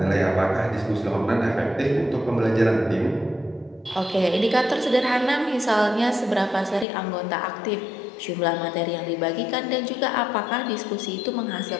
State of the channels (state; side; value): drops out; right; at 6.9 s